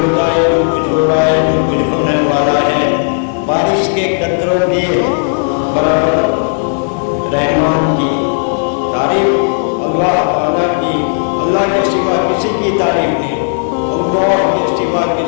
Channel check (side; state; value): right; silent; digital silence